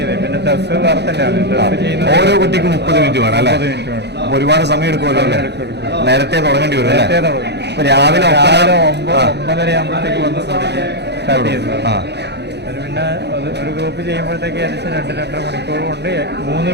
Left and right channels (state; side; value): late; left; 0.49 ms